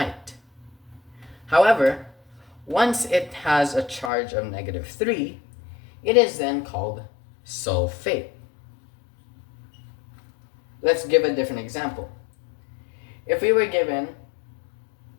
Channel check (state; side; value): drops out; right; at 4.1 s